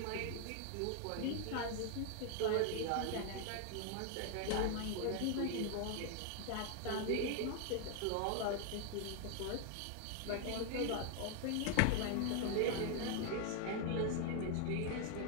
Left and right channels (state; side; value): different; both; correlation 0.00